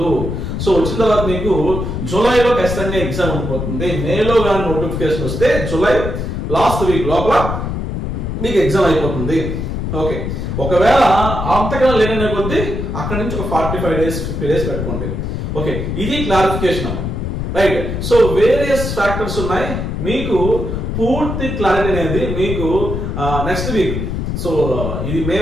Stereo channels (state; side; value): noise; left; rumble, 3 dB below the sound